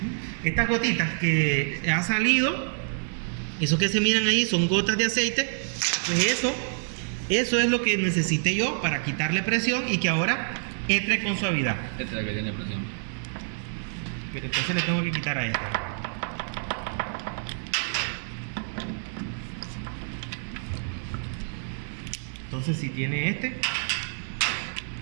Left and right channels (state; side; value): silent; left; 60 dB below the other